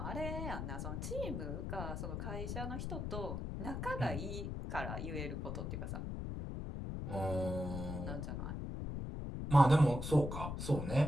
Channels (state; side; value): noise; left; rumble, 4 dB below the sound